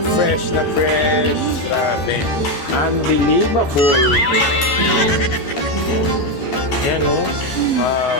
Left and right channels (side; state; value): right; late; 13 ms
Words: fresh na fresh. Grabe. Unbelievable. Yan o.